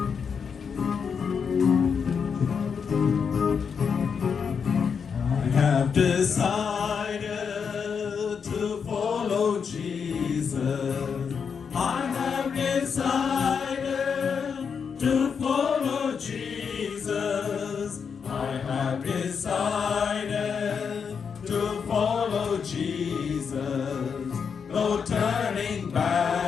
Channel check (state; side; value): quieter; right; 6.4 dB